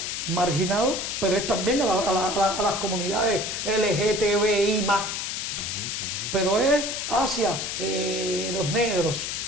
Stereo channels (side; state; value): left; noise; hiss, 3 dB below the sound